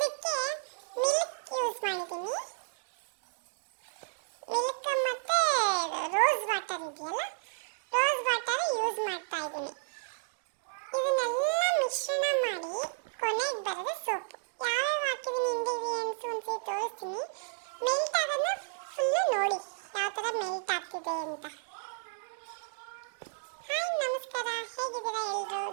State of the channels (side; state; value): left; silent; digital silence